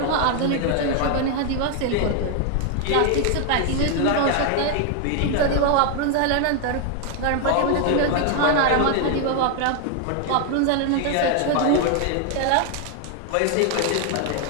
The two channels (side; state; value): both; different; correlation 0.00